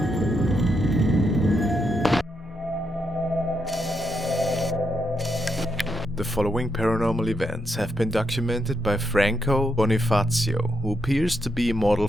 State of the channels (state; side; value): normal; both; correlation 0.81